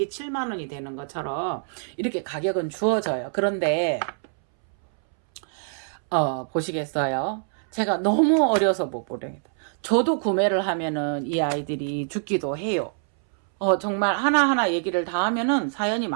7만원이 되는 것처럼 이렇게 가격은 주어져요. 그런데 보시겠어요? 제가 너무 어려서 못 보내겠다. 저도 구매를 하면은 이 아이들이 죽기도 해요. 정말 하나하나 얘기를 다 하면은 사연이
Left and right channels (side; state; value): left; silent; 62 dB below the other